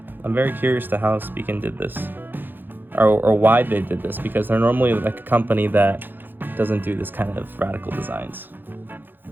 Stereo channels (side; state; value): left; late; 0.093 ms